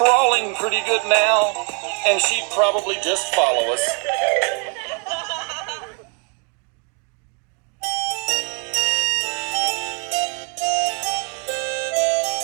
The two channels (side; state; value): left; quieter; 36.6 dB